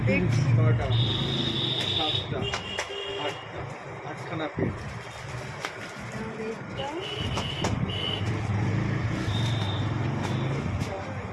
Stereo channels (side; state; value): both; identical; correlation 1.00